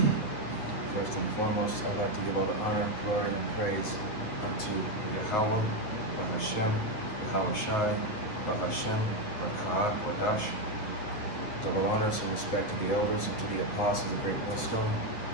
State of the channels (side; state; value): right; late; 9.5 ms